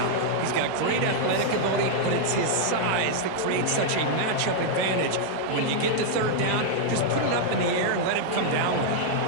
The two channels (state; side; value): different; both; correlation -0.01